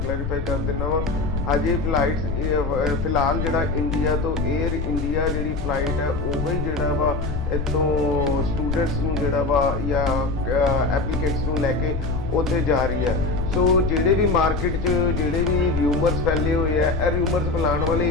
ਕਰ ਦਿੰਦਾ ਵਾ। ਹਜੇ ਫਲਾਈਟਸ ਫਿਲਹਾਲ ਜਿਹੜਾ ਇੰਡੀਆ ਤੋਂ 에ਅਰ ਇੰਡੀਆ ਜਿਹੜੀ ਫਲਾਈਟ ਹੈ ਉਹ ਹੀ ਜਿਹੜਾ ਵਾ ਇੱਥੋਂ ਸਟੂਡੈਂਟਸ ਨੂੰ ਜਿਹੜਾ ਵਾ ਜਾਂ ਐਪਲੀਕੈਂਟਸ ਨੂੰ ਲੈ ਕੇ ਉੱਥੇ ਜਾ ਰਹੀ ਹੈ। ਸੋ ਜਿਹੜੇ ਵੀ ਮਾਰਕੀਟ 'ਚ ਜਿਹੜੇ ਵੀ ਰਿਊਮਰਸ ਫੈਲੇ ਹੋਏ ਆ, ਇਹ ਰਿਊਮਰਸ ਫੈਲਾਉਣ ਵਾਲੇ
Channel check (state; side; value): noise; left; rumble, 3 dB below the sound